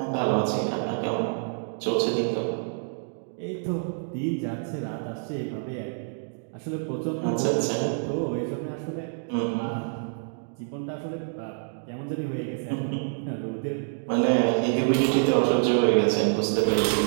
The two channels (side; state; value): left; silent; digital silence